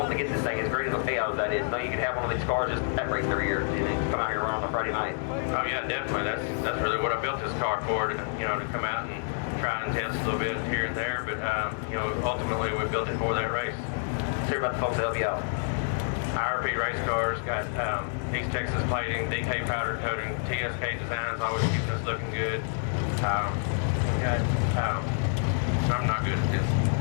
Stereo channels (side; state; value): right; silent; 59 dB below the other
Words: to get this thing as great as a payout as that is. No, you can have one of these cars just that race every year, and then come out here and run on a Friday night. Oh yeah, definitely. That's really what I built this car for, you know, to come out and try and test a little bit here and there, but, you know, ultimately we built it for that race. Let's hear about the folks that help you out. IRP race cars, got East Texas plating, DK powder coating, TSK designs, always keeping us looking good. I'm not good at this.